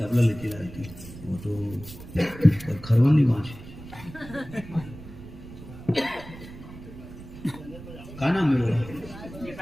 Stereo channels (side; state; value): right; noise; rumble, 15 dB below the sound